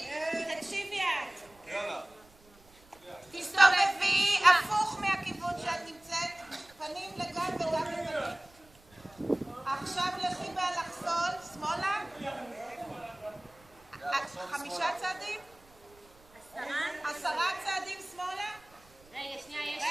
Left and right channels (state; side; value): noise; right; rumble, 27 dB below the sound